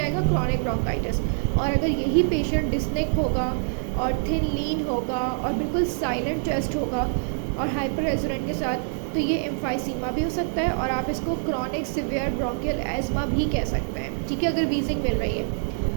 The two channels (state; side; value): silent; left; 59 dB below the other